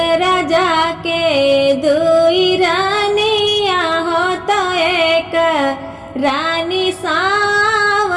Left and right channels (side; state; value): both; identical; correlation 1.00